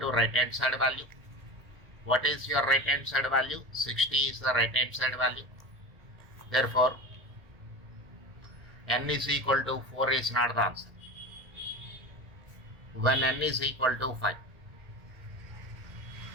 right hand side value. What is your right hand side value? 60 is the right hand side value. Therefore, n is equal to 4 is not the answer. When n is equal to 5,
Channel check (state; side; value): late; left; 1.9 ms